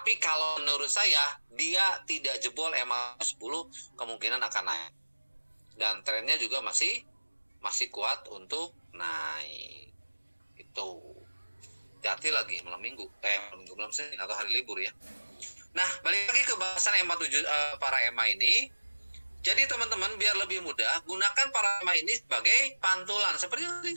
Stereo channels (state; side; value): inverted; both; correlation -1.00